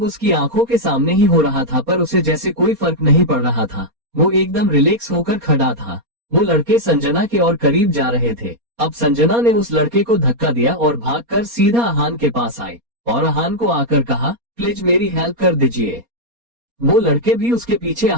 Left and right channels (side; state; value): left; late; 4.2 ms